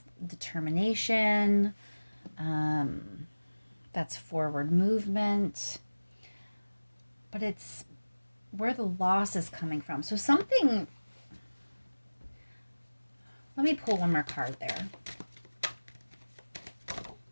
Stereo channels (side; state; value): both; inverted; correlation -1.00